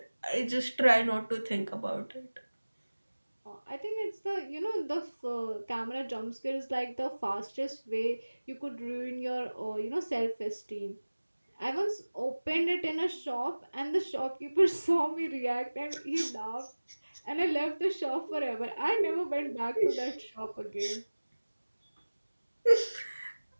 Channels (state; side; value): inverted; both; correlation -1.00